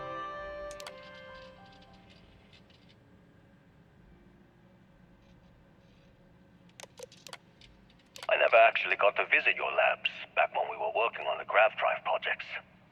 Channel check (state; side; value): identical; both; correlation 1.00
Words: I never actually got to visit your labs back when we were working on the grav drive projects.